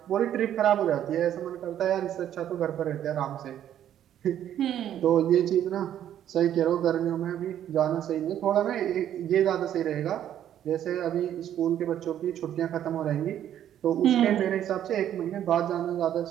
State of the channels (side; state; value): left; quieter; 10.8 dB